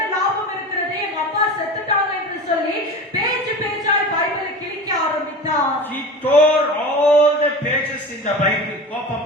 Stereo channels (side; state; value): both; normal; correlation 0.32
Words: லாபம் இருக்கிறது, எங்க அப்பா செத்துட்டாங்க என்று சொல்லி பேஜ் பேஜாய் பைபிளை கிழிக்க ஆரம்பித்தார். He tore all the pages in the Bible